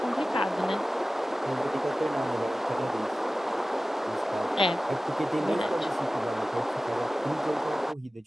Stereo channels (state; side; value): normal; both; correlation 0.96